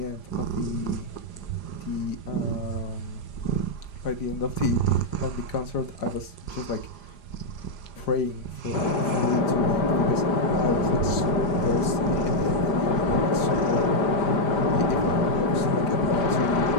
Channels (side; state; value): right; late; 5.0 ms